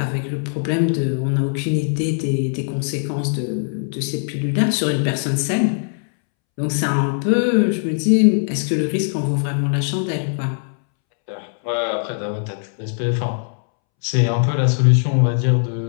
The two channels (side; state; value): right; silent; 66 dB below the other